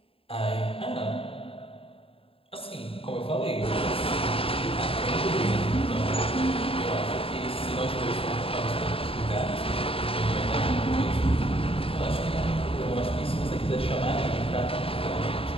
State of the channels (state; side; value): late; right; 0.27 ms